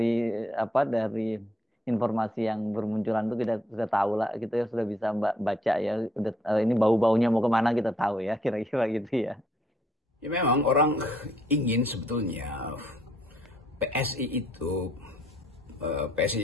informasi yang bermunculan itu kita sudah tahu lah, kita sudah bisa baca ya. Udah, ini bau-baunya mau kemana kita tahu ya, kira-kira gitu ya. Ya memang orang ingin sebetulnya PSI itu,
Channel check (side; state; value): both; normal; correlation 0.69